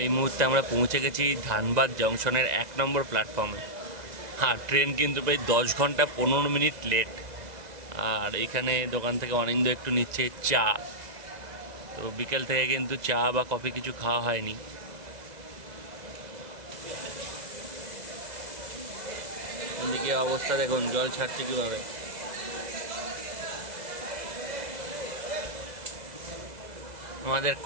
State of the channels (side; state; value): left; late; 2.0 ms